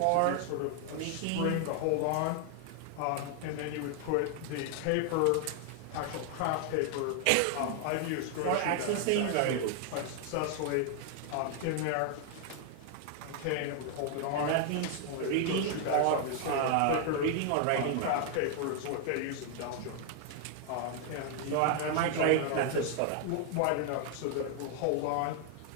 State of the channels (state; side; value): different; both; correlation 0.00